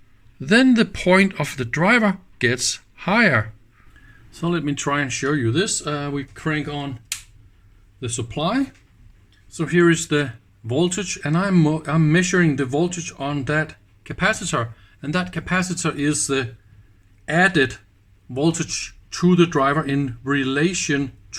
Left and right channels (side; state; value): both; identical; correlation 1.00